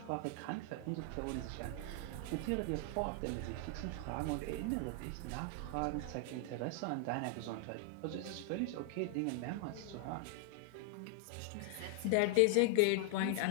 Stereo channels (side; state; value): both; different; correlation 0.00